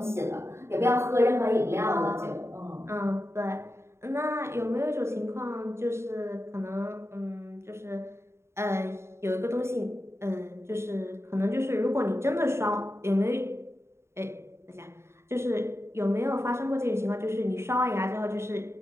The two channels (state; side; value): late; left; 0.13 ms